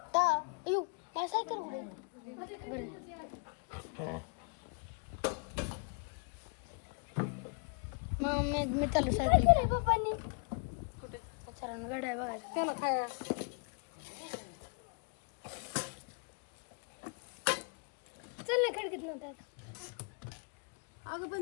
ता अयो माझी सायकल कुठे बरं मग मी चालू सायकल पप्पांनी विचारानं गाड्या बघायचं त्याला खाया चल ना खडकीत नव्हता अगं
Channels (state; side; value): quieter; right; 35.4 dB